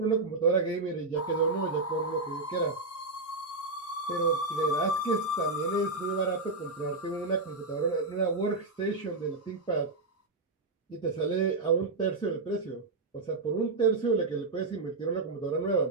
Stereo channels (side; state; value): left; quieter; 3.4 dB